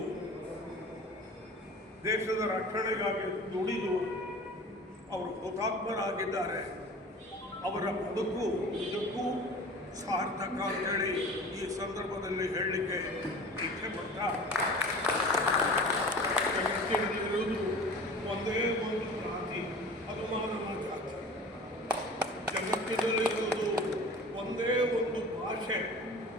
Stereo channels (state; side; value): normal; both; correlation 0.40